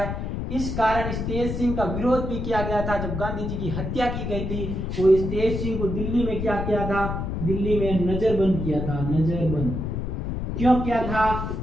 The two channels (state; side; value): noise; left; rumble, 3 dB below the sound